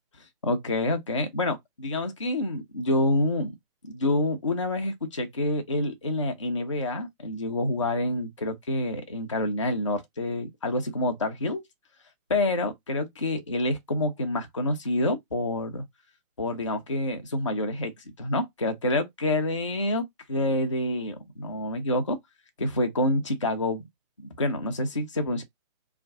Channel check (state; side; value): inverted; both; correlation -0.44